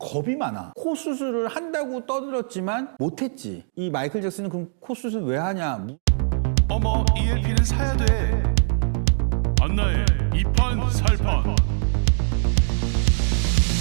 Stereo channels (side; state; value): left; silent; digital silence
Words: 많아. 코 수술을 한다고 떠들었지만 못했지. 이 마이클 잭슨은 그럼 코 수술 왜 하냐? 어머 ELP는 사야 돼. 안나의 이판살판.